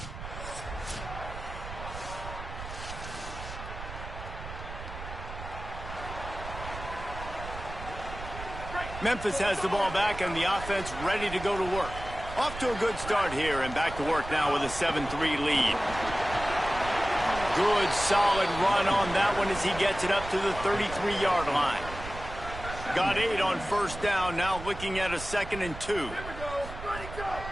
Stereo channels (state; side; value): noise; right; rumble, 10 dB below the sound